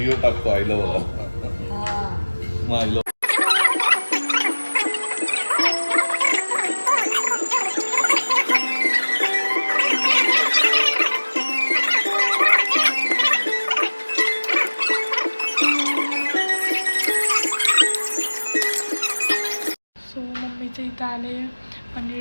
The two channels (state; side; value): inverted; both; correlation -1.00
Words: टाकतो आईला बघा. मग आईला सो मम्मीच्या इथं आले